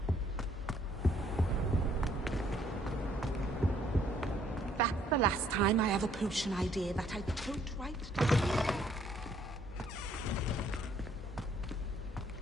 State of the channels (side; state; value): both; normal; correlation 0.65